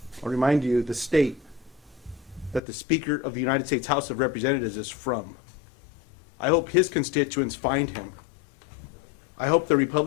I'll remind you the state that the Speaker of the United States House of Representatives is from. I hope his constituents find him. I hope the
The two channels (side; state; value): right; drops out; at 2.6 s